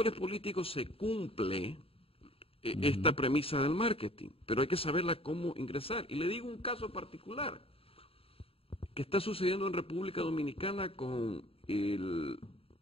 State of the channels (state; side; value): late; right; 0.27 ms